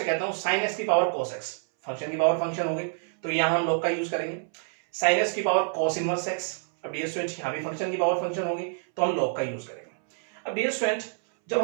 कहता हूं sin x की पावर cos x, फंक्शन की पावर फंक्शन हो गई, तो यहां हम लॉग का यूज करेंगे। sin x की पावर cos इनवर्स x, अब डियर स्टूडेंट यहां भी फंक्शन की पावर फंक्शन होगी तो हम लॉग का यूज करेंगे। अब डियर स्टूडेंट, जब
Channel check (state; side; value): silent; left; 60 dB below the other